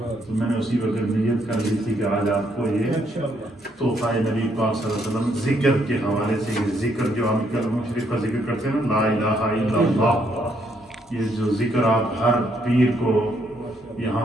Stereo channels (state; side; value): normal; both; correlation 0.72